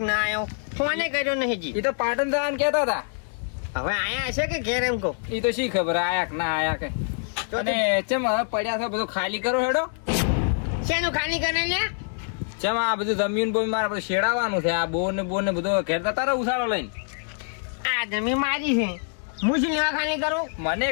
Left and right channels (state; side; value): silent; right; 62 dB below the other